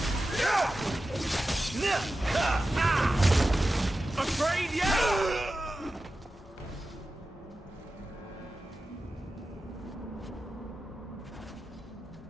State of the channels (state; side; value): normal; both; correlation 0.93